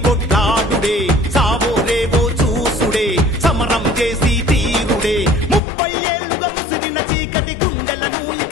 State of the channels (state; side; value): drops out; right; at 5.6 s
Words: కొట్లాడుడే సావో రేవో చూసుడే సమరం చేసి తీరుడే 30 ఏళ్లుగా ముసిరిన చీకటి గుండెలను